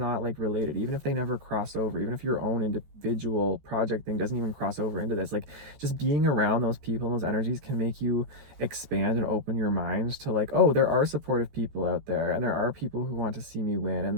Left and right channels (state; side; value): late; left; 14 ms